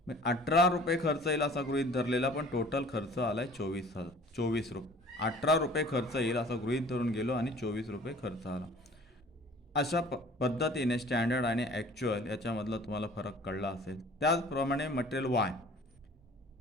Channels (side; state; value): both; normal; correlation 0.49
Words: 18 रुपये खर्च येईल असा गृहीत धरलेला, पण टोटल खर्च आला आहे 24 रुपये. 18 रुपये खर्च येईल असं गृहीत धरून गेलो आणि 24 रुपये खर्च आला. अशा पद्धतीने स्टँडर्ड आणि ॲक्च्युअल याच्यामधला तुम्हाला फरक कळला असेल. त्याचप्रमाणे मटेरियल